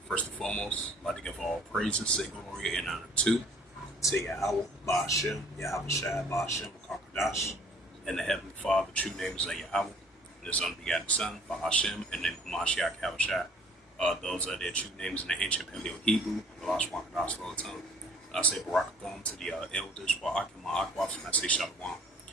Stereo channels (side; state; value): both; normal; correlation 0.55